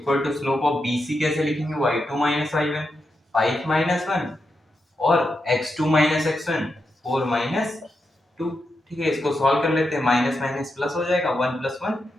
to slope of BC कैसे लिखेंगे, y2 y1 5 -1 और x2 x1 4 -2। ठीक है, इसको सॉल्व कर लेते हैं, माइनस माइनस प्लस हो जाएगा, 1 + 1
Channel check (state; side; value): normal; both; correlation 0.86